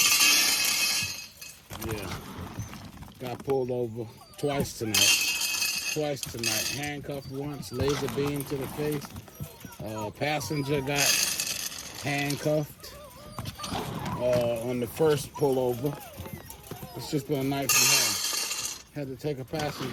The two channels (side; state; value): both; identical; correlation 1.00